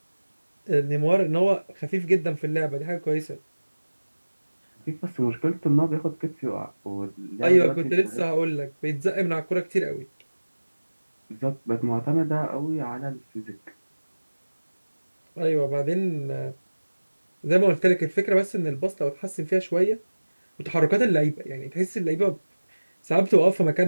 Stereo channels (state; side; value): inverted; both; correlation -1.00